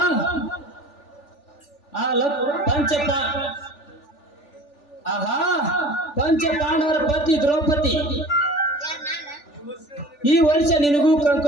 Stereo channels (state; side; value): late; right; 3.4 ms